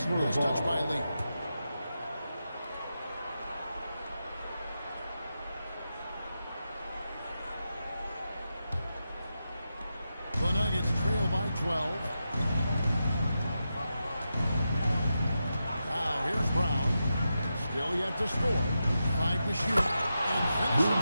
touched by Lee. The Nuggets trail by 12. Now here's Brown. Still yet to score. 5 to shoot. And finishes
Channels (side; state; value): both; inverted; correlation -0.89